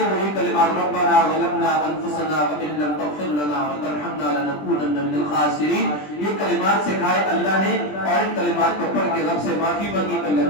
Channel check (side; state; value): right; late; 20 ms